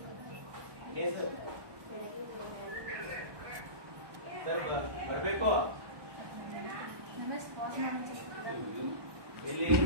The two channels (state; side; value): late; left; 1.2 ms